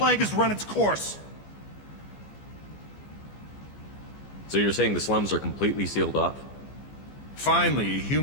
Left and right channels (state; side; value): late; right; 15 ms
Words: has run its course. So you're saying the slums are completely sealed off? Finally, a